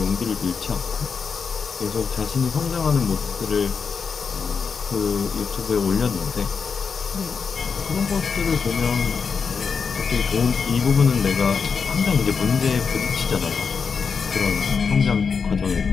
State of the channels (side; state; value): right; quieter; 5.7 dB